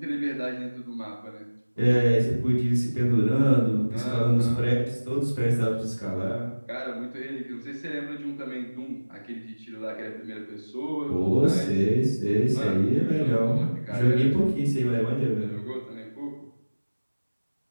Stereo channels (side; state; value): both; inverted; correlation -1.00